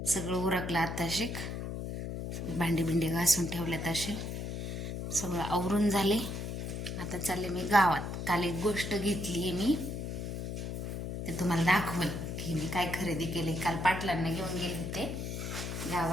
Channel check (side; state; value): left; noise; hum, 5 dB below the sound